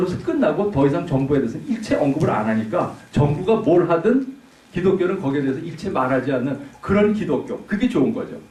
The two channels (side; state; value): both; identical; correlation 1.00